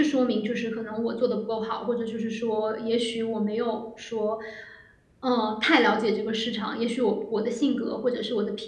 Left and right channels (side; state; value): both; identical; correlation 1.00